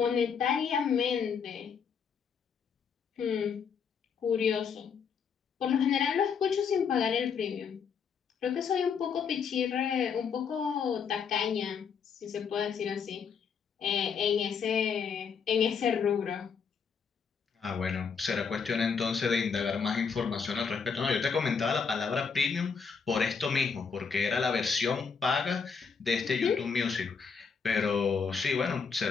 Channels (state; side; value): quieter; right; 6.1 dB